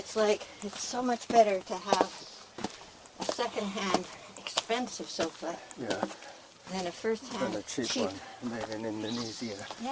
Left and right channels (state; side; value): identical; both; correlation 1.00